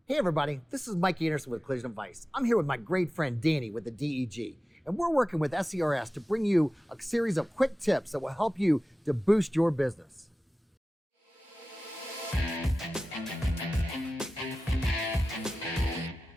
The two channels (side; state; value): both; normal; correlation 0.95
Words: Hey everybody, this is Mike Anderson with Collision Advice. I'm here with my great friend Danny with the DEG, and we're working with SCRS to bring you a series of quick tips that will help you to boost your business.